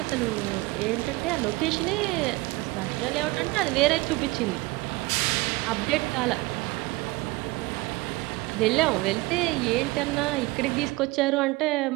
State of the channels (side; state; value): left; quieter; 21.9 dB